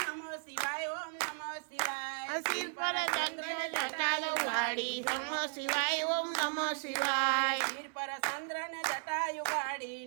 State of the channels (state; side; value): silent; left; 54 dB below the other